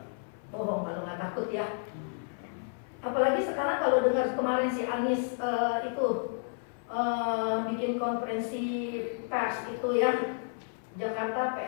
Bohong kalau nggak takut ya. Apalagi sekarang kalau dengar kemarin si Anies bikin konferensi pers itu ya, Jakarta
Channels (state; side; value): silent; right; 57 dB below the other